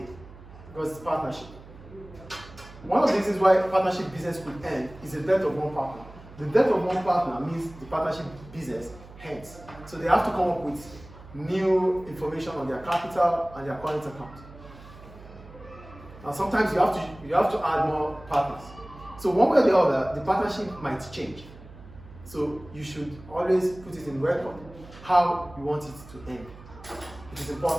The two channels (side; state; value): right; noise; hum, 18 dB below the sound